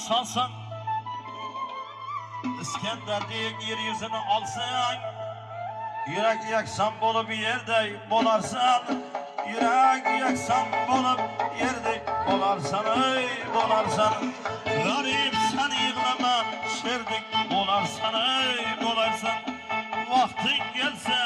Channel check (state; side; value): identical; both; correlation 1.00